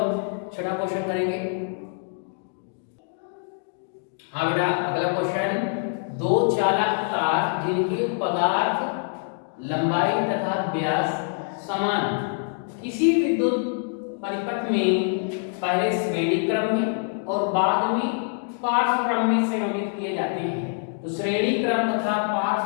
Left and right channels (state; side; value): silent; right; 62 dB below the other